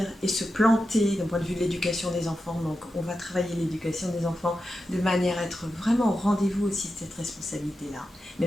et se planter d'un point de vue de l'éducation des enfants. Donc on va travailler l'éducation des enfants de manière à être vraiment au rendez-vous aussi de cette responsabilité-là,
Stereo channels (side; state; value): both; normal; correlation 0.90